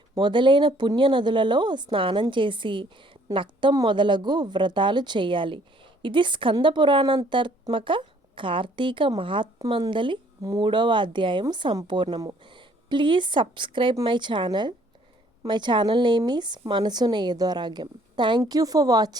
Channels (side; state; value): both; normal; correlation 0.61